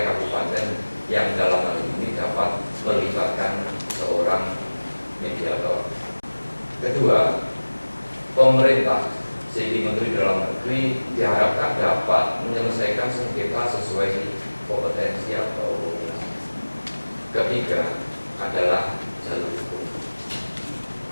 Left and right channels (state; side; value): inverted; both; correlation -1.00